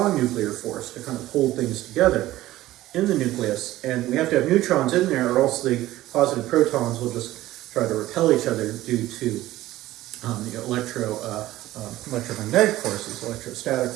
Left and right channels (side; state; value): left; quieter; 15.8 dB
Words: nuclear force to kind of hold things together in the nucleus. And we have to have neutrons in there, or else the positive protons will just try to repel each other due to the electromagnetic forces, electrostatic